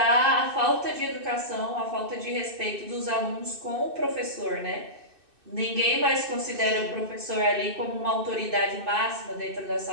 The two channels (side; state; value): left; late; 2.6 ms